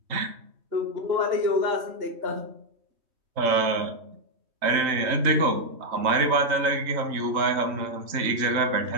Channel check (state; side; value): late; left; 3.2 ms